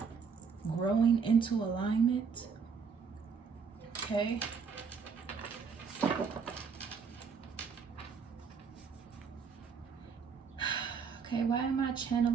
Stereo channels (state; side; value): quieter; left; 5.8 dB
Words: growing into alignment. Okay. Okay, why am I